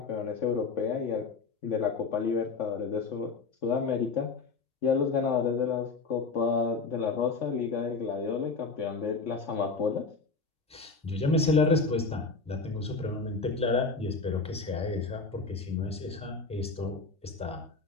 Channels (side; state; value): right; quieter; 4.3 dB